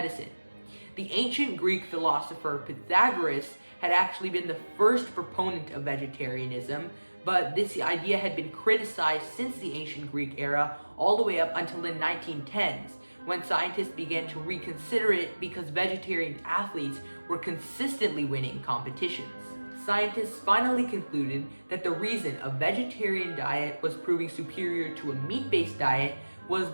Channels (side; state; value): both; inverted; correlation -1.00